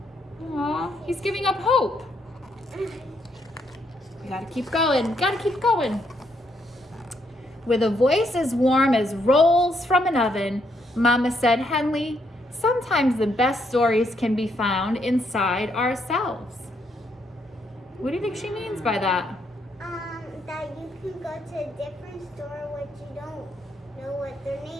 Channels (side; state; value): both; normal; correlation 0.75